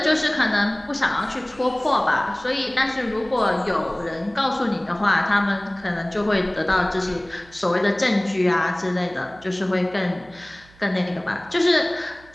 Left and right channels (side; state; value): right; noise; hum, 26 dB below the sound